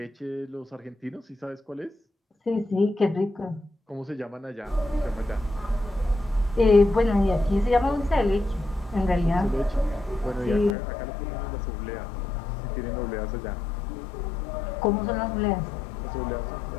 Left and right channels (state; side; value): drops out; right; at 10.8 s